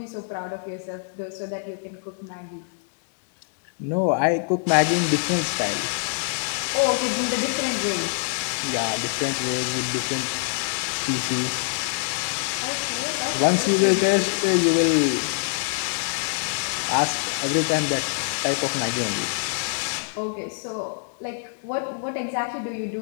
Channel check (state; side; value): silent; right; digital silence